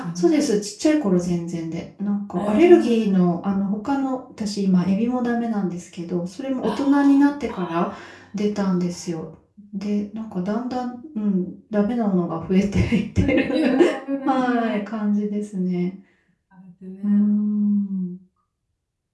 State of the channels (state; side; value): identical; both; correlation 1.00